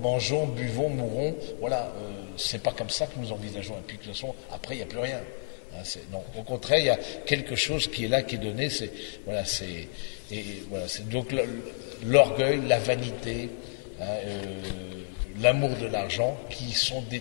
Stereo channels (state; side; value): silent; right; digital silence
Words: buvons, mourons. Voilà, c'est pas comme ça que nous envisageons. Et puis, de toute façon, après, il n'y a plus rien. Non, au contraire, il y a quelque chose qui est là, qui est donné. C'est donc l'orgueil, la vanité, l'amour de l'argent qui sont